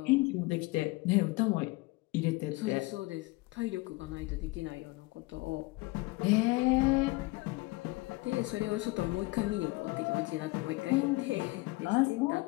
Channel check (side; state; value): right; quieter; 22.6 dB